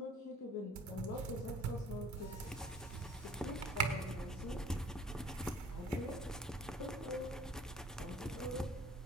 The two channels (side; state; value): both; normal; correlation 0.52